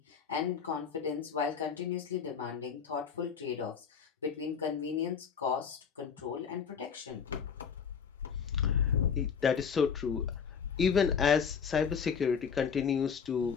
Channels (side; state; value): right; quieter; 6.7 dB